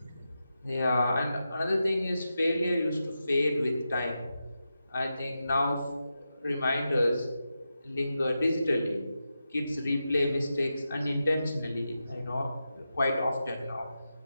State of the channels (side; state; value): both; inverted; correlation -0.89